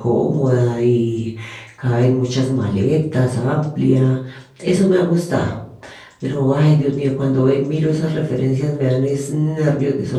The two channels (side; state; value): both; identical; correlation 1.00